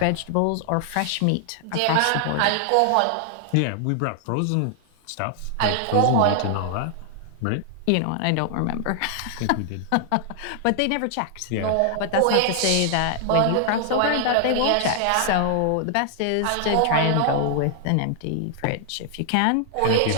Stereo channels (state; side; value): different; both; correlation 0.00